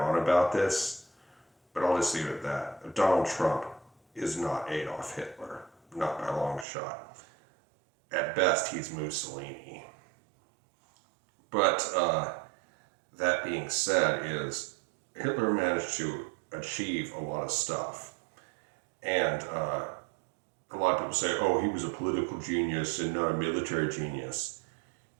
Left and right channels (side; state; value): left; drops out; at 6.7 s